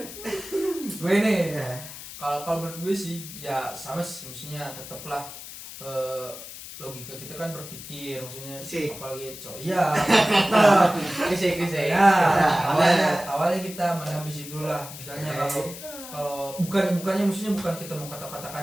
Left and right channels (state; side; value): noise; left; hiss, 12 dB below the sound